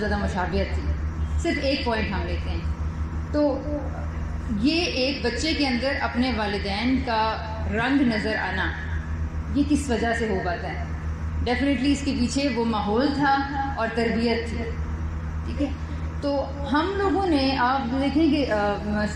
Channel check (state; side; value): identical; both; correlation 1.00